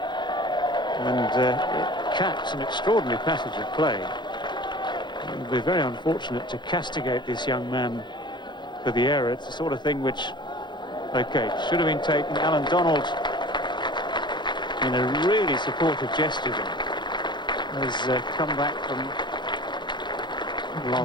And it caps an extraordinary passage of play. It would be very unfortunate to castigate this young man for the error. It's the sort of thing which, OK, should have been taken. Allan Donald, in a really supportive gesture there, has come back from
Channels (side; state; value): right; late; 0.22 ms